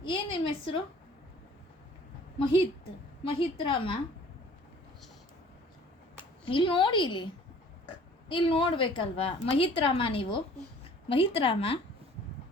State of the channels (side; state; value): both; normal; correlation 0.51